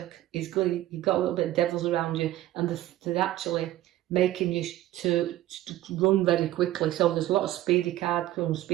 is good. You've got a little bit of devils around you, and they're actually making you to run very quickly. So there's a lot of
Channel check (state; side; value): quieter; left; 14.9 dB